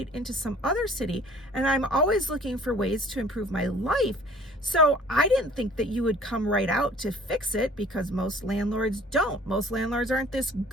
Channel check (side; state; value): both; normal; correlation 0.52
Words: into some other city, and I'm always looking for ways to improve my life. So I didn't think that you would come right out to fix it, because most landlords don't. Most landlords aren't this